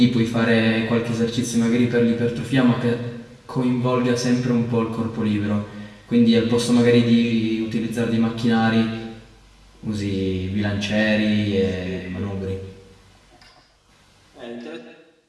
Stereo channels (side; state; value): both; identical; correlation 1.00